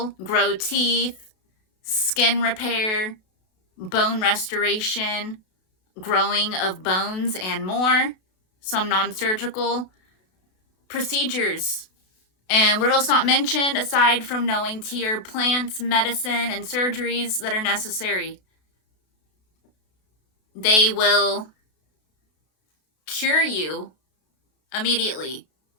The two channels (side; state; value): right; late; 32 ms